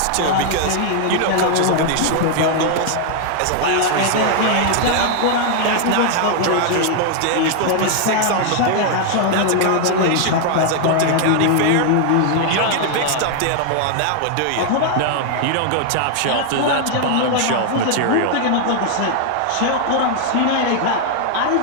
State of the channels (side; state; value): both; different; correlation 0.00